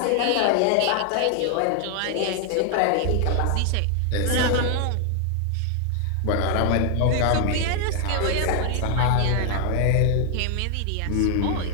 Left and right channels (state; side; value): different; both; correlation 0.00